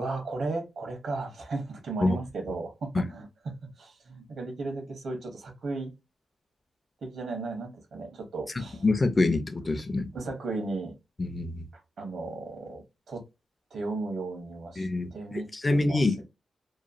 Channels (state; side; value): normal; both; correlation 0.89